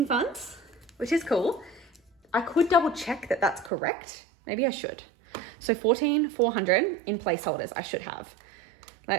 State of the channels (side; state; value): left; drops out; at 3.7 s